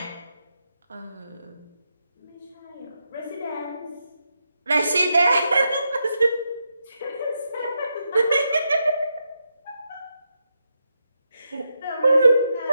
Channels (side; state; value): both; inverted; correlation -0.84